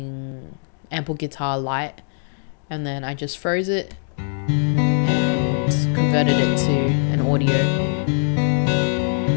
Ample Guitar Lite, and then I just froze it and converted it to an audio.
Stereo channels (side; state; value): right; silent; digital silence